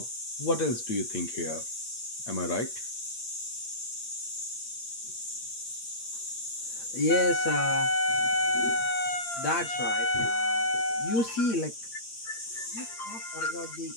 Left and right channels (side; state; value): right; late; 8.7 ms